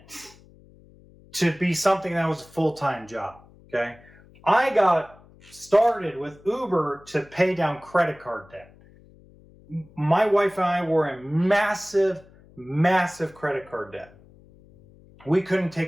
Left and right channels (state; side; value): noise; left; hum, 25 dB below the sound